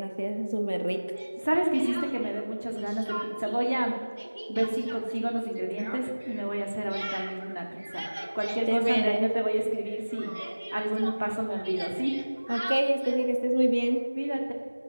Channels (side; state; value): both; inverted; correlation -1.00